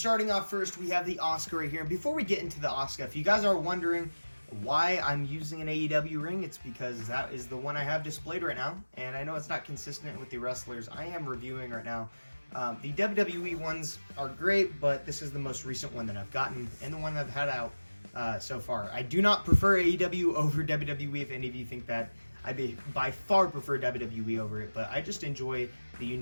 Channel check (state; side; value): inverted; both; correlation -1.00